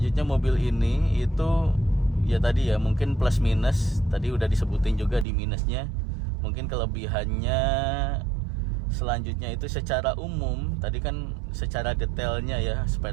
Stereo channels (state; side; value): drops out; left; at 5.2 s